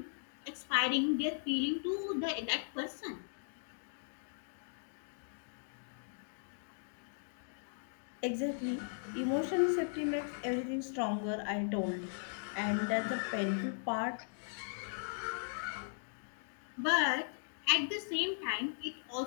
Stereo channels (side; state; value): right; silent; digital silence